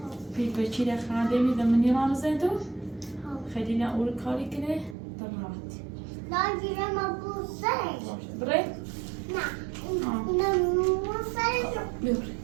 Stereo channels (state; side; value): drops out; left; at 5.0 s